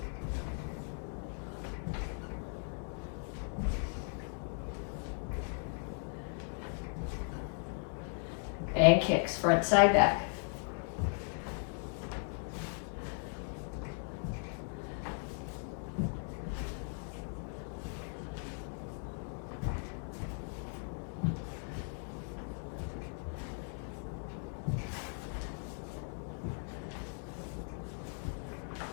And kicks, front, side, back.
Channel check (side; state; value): right; silent; 53 dB below the other